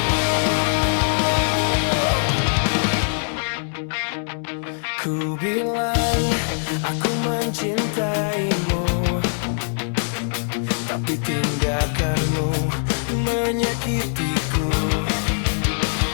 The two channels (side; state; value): right; silent; 64 dB below the other